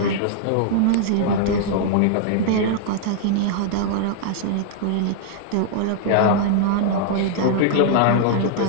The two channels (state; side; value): different; both; correlation -0.01